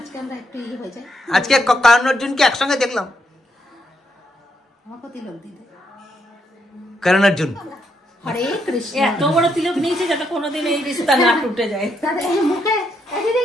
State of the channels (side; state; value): both; normal; correlation 0.77